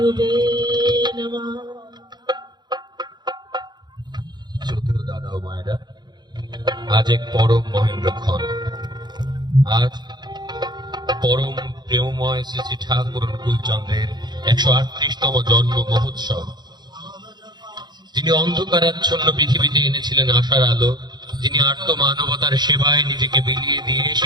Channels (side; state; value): left; late; 0.21 ms